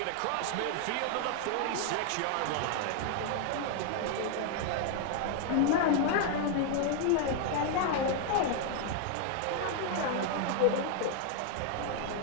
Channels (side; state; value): both; different; correlation 0.00